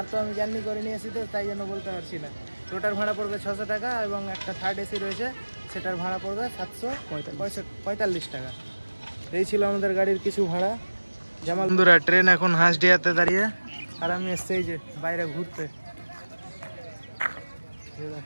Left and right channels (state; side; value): inverted; both; correlation -1.00